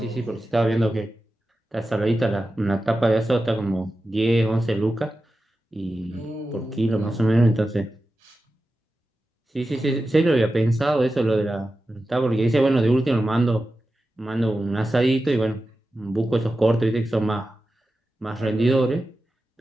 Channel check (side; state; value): both; normal; correlation 0.93